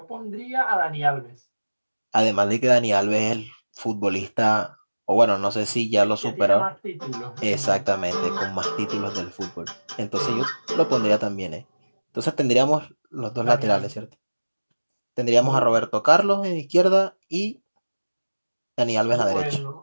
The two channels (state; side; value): inverted; both; correlation -1.00